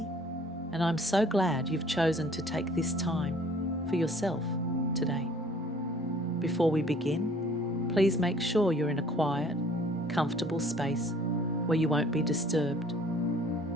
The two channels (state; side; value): normal; both; correlation 0.55